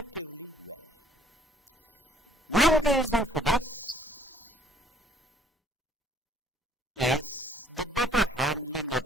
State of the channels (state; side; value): normal; both; correlation 0.59